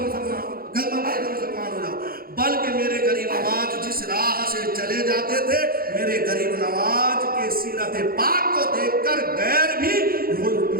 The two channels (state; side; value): late; left; 0.43 ms